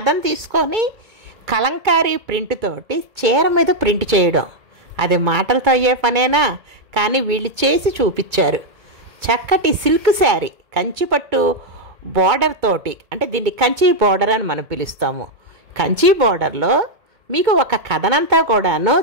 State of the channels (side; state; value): left; late; 2.2 ms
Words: తీసుకొని కలంకారీ ప్రింట్ తోటి చీర మీద ప్రింట్ చేయడం, అది మాటలతో అయ్యే పనేనా? కానీ వీళ్ళు చేసి చూపించారు. చక్కటి సిల్క్ శారీ, కంచిపట్టు బార్డర్ తోటి, అంటే దీన్ని కంచి బార్డర్ అని మనం పిలుస్తాము. కంచి బార్డర్లో మీకు ఒక కథనంతా కూడాను